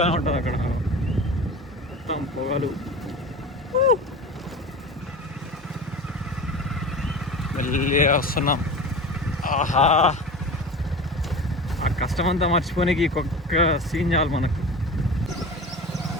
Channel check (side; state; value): both; normal; correlation 0.33